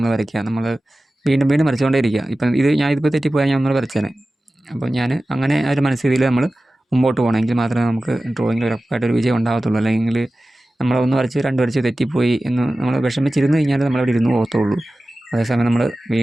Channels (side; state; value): both; normal; correlation 0.96